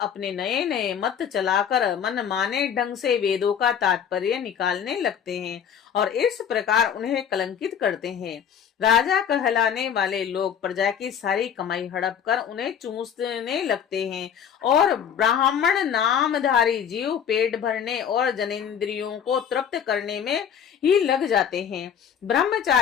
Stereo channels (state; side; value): quieter; right; 8.2 dB